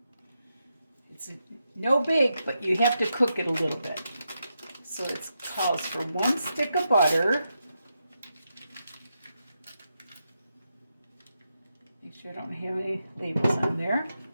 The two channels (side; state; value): both; inverted; correlation -0.85